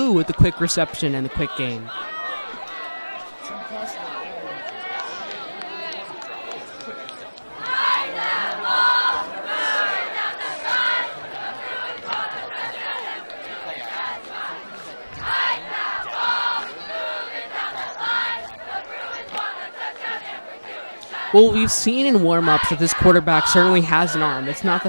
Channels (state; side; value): inverted; both; correlation -1.00